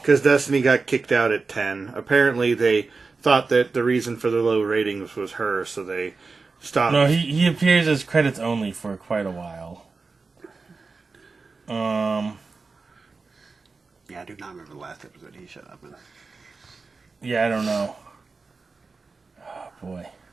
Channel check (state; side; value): quieter; left; 4.2 dB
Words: because Destiny got kicked out at 10. Apparently, they thought that the reason for the low ratings was her, so they stopped. No, he appears as credits only for quite a while. Yeah, I do not remember the last episode he showed up in. Yeah, I don't know. Oh, boy.